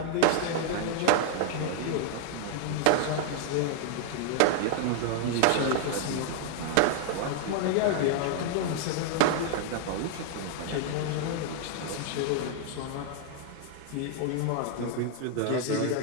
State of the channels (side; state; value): both; different; correlation 0.00